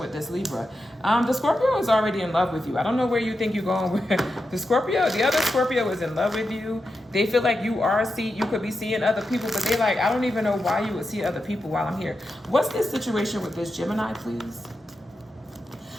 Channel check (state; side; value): normal; both; correlation 0.88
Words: this Libra. The Scorpio is already in love with you. I don't know where you think you're going with the Scorpio. The other Scorpio is in love with you. They feel like you could be seeing other people, but they like, I don't even know why you would see other people while I'm here. What's this situation with this Gemini, please?